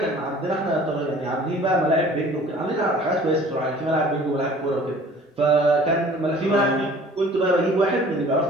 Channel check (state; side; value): normal; both; correlation 0.49